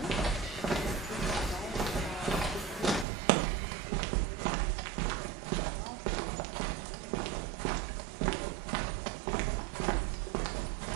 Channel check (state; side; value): drops out; left; at 3.1 s